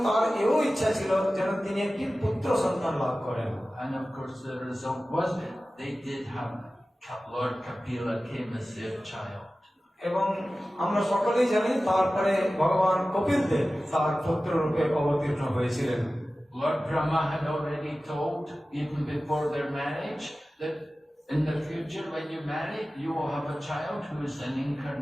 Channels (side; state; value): both; normal; correlation 0.96